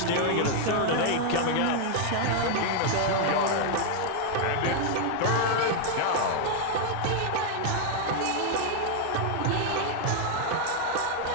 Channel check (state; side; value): different; both; correlation 0.00